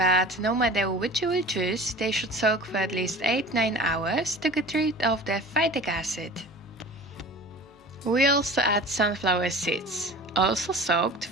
no matter which you will choose, they should soak for at least 8-9 hours to get rid of the phytic acid. We also add sunflower seeds, also soaked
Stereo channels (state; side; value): normal; both; correlation 0.39